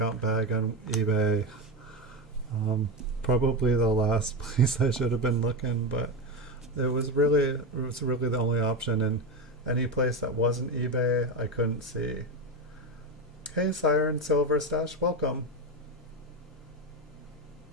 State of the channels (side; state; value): both; normal; correlation 0.15